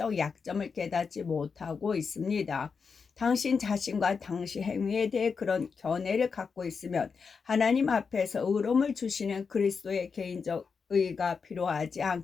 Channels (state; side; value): quieter; right; 5.5 dB